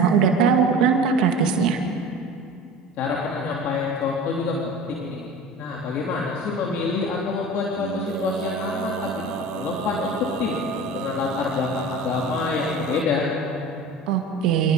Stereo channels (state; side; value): normal; both; correlation 0.36